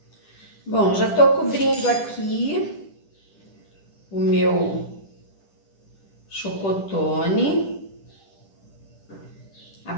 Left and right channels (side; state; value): right; late; 10 ms